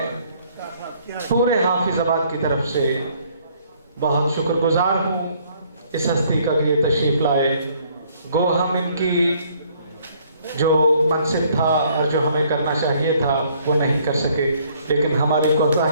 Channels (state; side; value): inverted; both; correlation -0.63